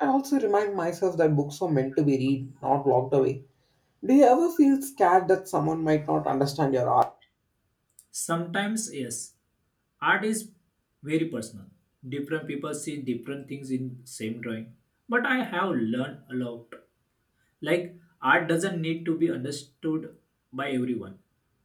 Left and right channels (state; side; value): identical; both; correlation 1.00